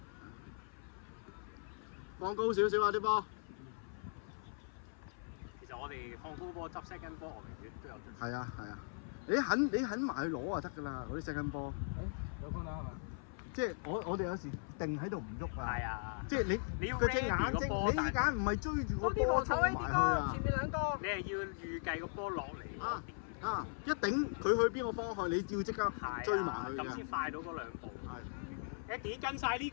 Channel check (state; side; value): silent; right; 52 dB below the other